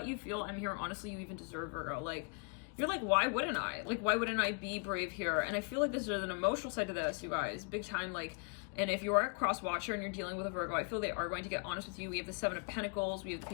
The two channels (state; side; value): quieter; right; 36.9 dB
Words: you feel. I'm here, honestly, you even deserve, Virgo. Like, you're like, why wouldn't I? Like, why wouldn't I be brave here? And I feel like there's an emotional side to this, you guys, big time. Like, and if you are a cross watcher and you're dealing with a Virgo, I feel they are going to get honest with you. We have the 7 of Pentacles, we have the